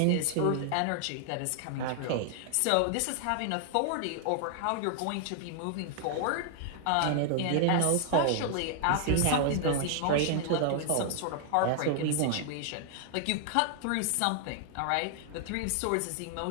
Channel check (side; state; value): both; different; correlation 0.00